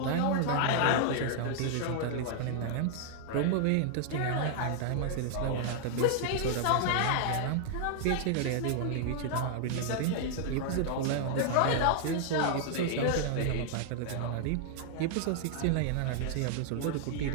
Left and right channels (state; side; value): different; both; correlation 0.00